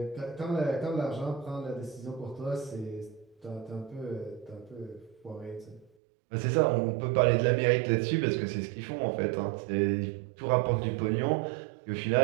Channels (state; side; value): drops out; left; at 5.9 s